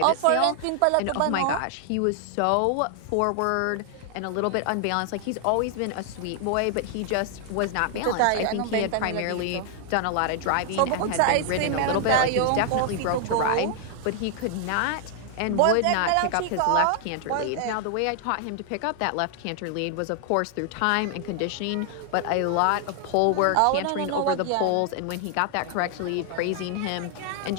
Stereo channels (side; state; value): both; different; correlation 0.00